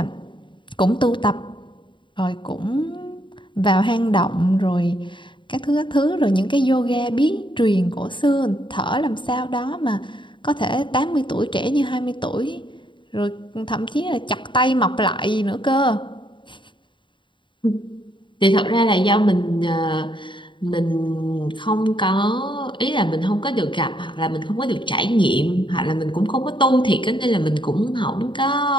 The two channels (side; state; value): right; late; 0.23 ms